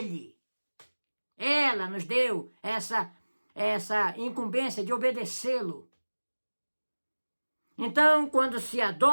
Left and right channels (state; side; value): inverted; both; correlation -1.00